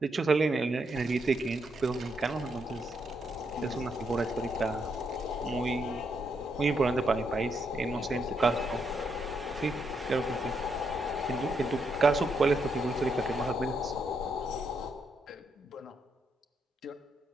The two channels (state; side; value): normal; both; correlation 0.79